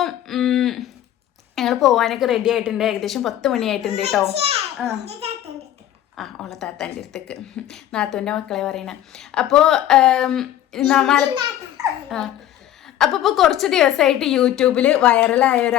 ഞങ്ങൾ പോകാനൊക്കെ റെഡി ആയിട്ടുണ്ട്. ഏകദേശം 10 മണിയായിട്ടുണ്ട് കേട്ടോ. ഓള താത്താൻ്റെ അടുത്തേക്ക്, നാത്തൂൻ്റെ മക്കളെ പറയണ. അപ്പോൾ അപ്പോൾ ഇപ്പോൾ കുറച്ച് ദിവസമായിട്ട് യൂട്യൂബിൽ വൈറലായ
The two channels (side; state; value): right; quieter; 12.1 dB